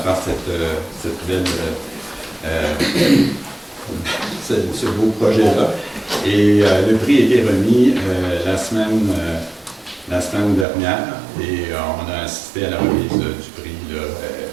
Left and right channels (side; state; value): left; drops out; at 10.7 s